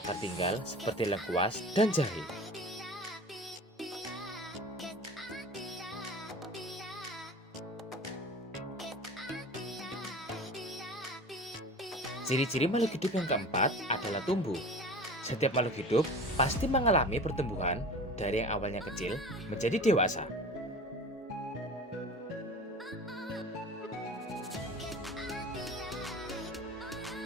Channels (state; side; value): normal; both; correlation 0.37